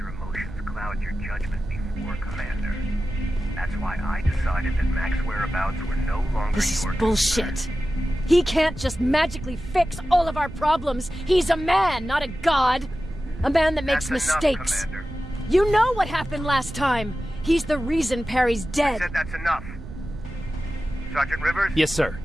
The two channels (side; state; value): right; noise; rumble, 13 dB below the sound